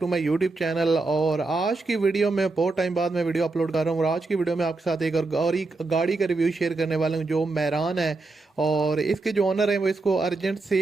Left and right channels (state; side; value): quieter; left; 3.5 dB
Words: to my YouTube channel. और आज की वीडियो में बहुत टाइम बाद मैं वीडियो अपलोड कर रहा हूँ और आज की वीडियो में आपके साथ एक गाड़ी का रिव्यू शेयर करने वाला हूँ जो मैरान है। और इसके जो ओनर हैं वो इसको अर्जेंट